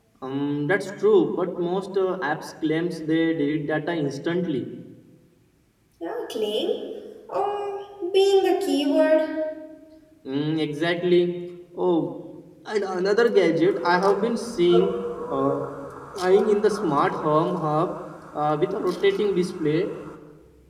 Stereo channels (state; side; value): identical; both; correlation 1.00